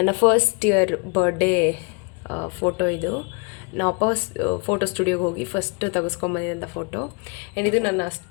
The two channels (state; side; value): quieter; right; 33.3 dB